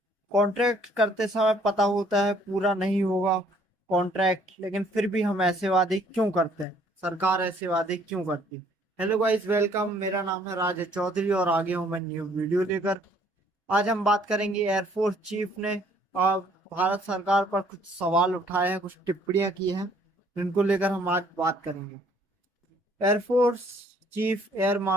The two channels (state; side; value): normal; both; correlation 0.61